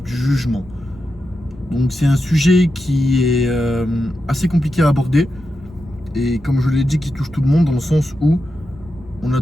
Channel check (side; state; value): both; normal; correlation 0.88